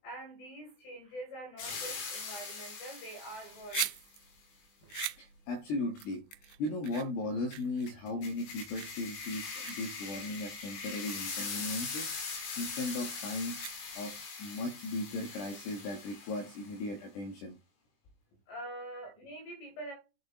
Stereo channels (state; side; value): late; right; 20 ms